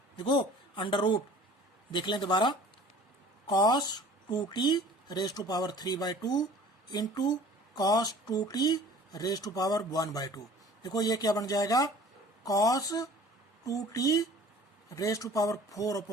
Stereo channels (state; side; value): normal; both; correlation 0.47